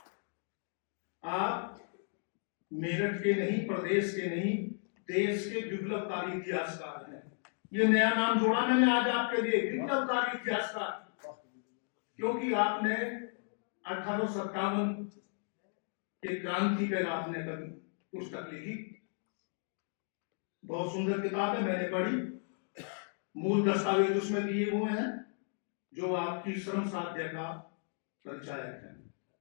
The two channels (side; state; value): right; silent; 55 dB below the other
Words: आप मेरठ के नहीं, प्रदेश के नहीं, देश के विप्लवकारी इतिहासकार हैं। ये नया नाम जोड़ा मैंने आज आपके लिए, विप्लवकारी इतिहासकार, क्योंकि आपने 1857 के क्रांति पर आपने कभी पुस्तक लिखी, बहुत सुंदर किताब है, मैंने पढ़ी। मूल दस्तावेज उसमें दिए हुए हैं जो आपकी श्रम साध्य का परिचायक